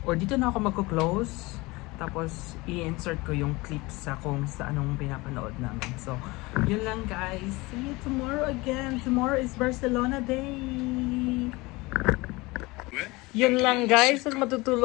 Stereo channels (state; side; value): quieter; right; 22.8 dB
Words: magko-close. Tapos i-insert ko yung clips sa kung sa anong pinapanood namin. So, yun lang guys. See you tomorrow again. Tomorrow is Barcelona Day. Yun lang guys. At